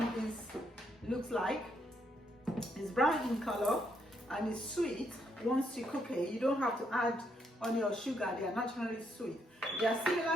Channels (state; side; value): normal; both; correlation 0.75